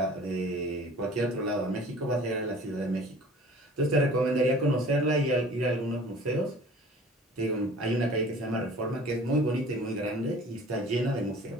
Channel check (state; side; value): normal; both; correlation 0.47